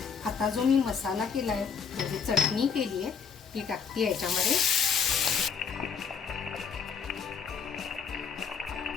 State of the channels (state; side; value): quieter; right; 6.3 dB